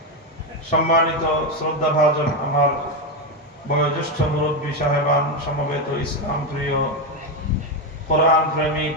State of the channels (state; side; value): normal; both; correlation 0.09